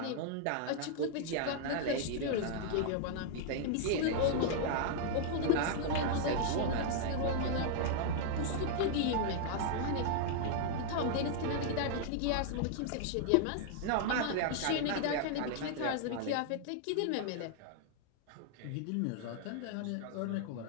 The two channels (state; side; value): different; both; correlation -0.01